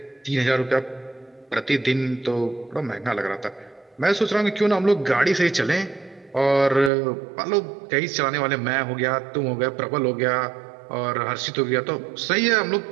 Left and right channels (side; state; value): left; drops out; at 6.9 s